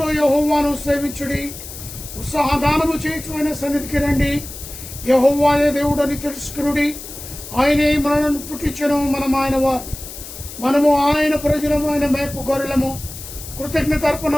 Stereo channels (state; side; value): noise; left; hiss, 12 dB below the sound